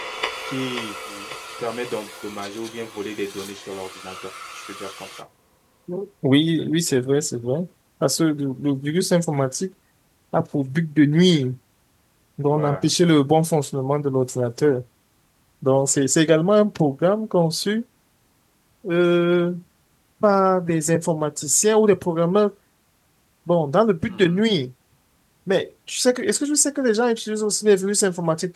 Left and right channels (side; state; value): both; identical; correlation 1.00